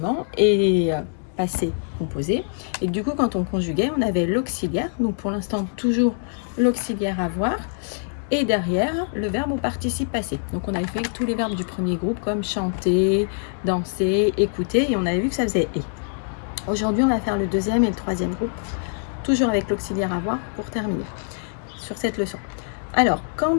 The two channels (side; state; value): right; silent; digital silence